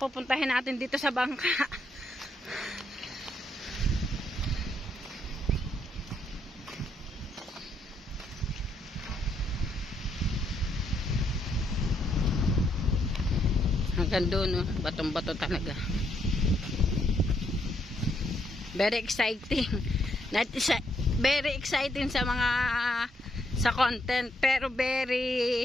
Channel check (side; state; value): both; normal; correlation 0.75